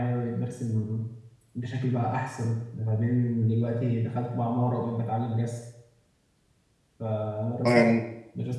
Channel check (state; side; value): identical; both; correlation 1.00